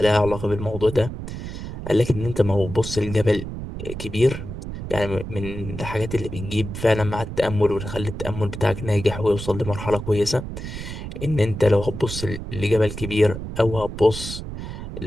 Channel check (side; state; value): right; noise; rumble, 8 dB below the sound